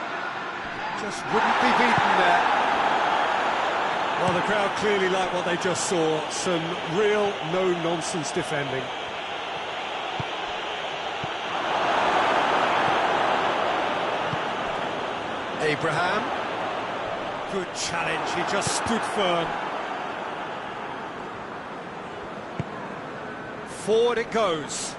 Just wouldn't be beaten there. Well, the crowd clearly like what they just saw. Some real no-nonsense defending. Abraham. Good challenge, he just stood firm. Forward it goes.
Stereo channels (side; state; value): both; identical; correlation 1.00